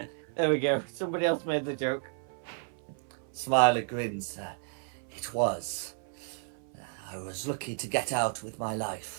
There we go. Somebody else made the joke. Smiler grins. It was. I was lucky to get out with my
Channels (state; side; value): silent; left; 56 dB below the other